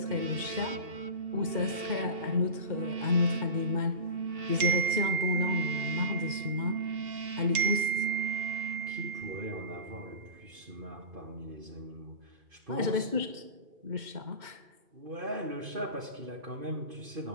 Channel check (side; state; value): left; late; 2.2 ms